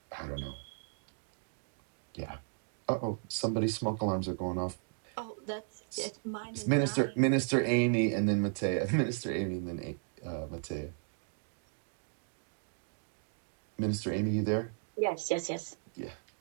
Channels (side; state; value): left; silent; 54 dB below the other